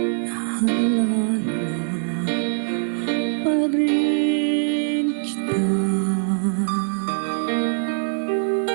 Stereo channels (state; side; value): silent; left; 60 dB below the other